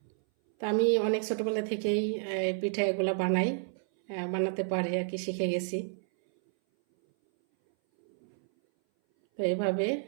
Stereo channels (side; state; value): left; silent; 58 dB below the other